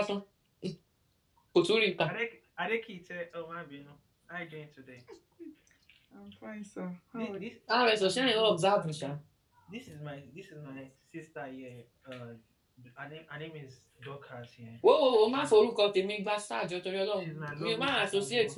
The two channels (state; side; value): identical; both; correlation 1.00